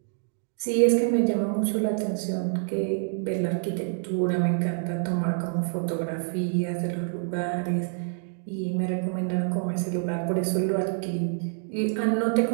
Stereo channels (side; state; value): left; silent; 60 dB below the other